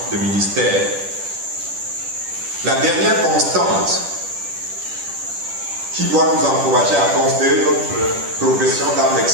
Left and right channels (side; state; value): left; late; 10 ms